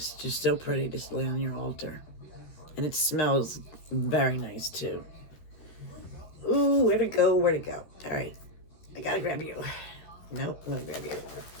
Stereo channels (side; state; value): right; late; 13 ms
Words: just so pretty to lay on your altar. And it smells very nice too. Ooh, where to go, where to go. All right, I gotta grab you. Nope, I'm gonna grab you.